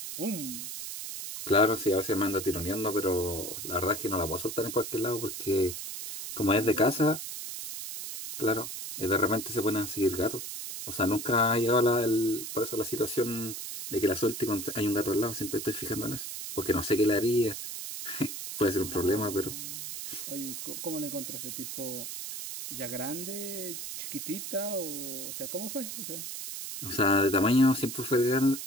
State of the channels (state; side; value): noise; right; hiss, 7 dB below the sound